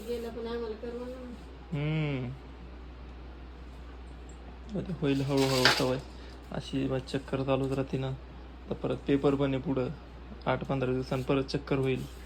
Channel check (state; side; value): identical; both; correlation 1.00